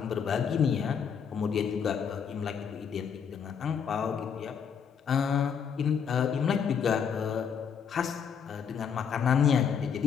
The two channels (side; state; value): right; quieter; 7.1 dB